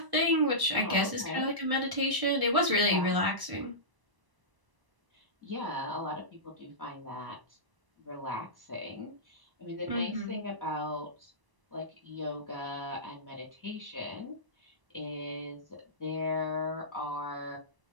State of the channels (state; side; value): late; left; 1.0 ms